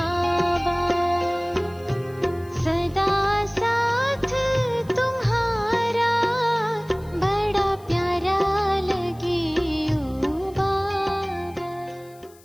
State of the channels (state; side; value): noise; left; hiss, 27 dB below the sound